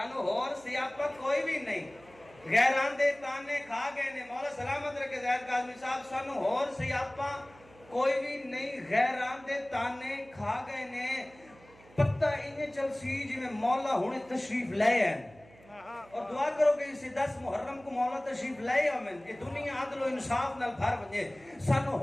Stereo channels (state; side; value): noise; right; hum, 25 dB below the sound